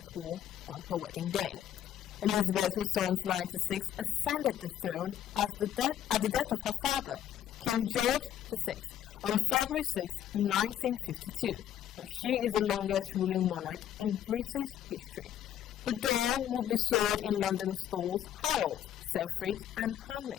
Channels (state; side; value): quieter; right; 10.8 dB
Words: wore on her wedding day. Elizabeth, who turns 96, ascended the throne at the death of her father, King George VI, on February 6, 1952. Now, she is the longest ruling monarch in British history. The doll will be sold in London stores Harrods, Selfridge and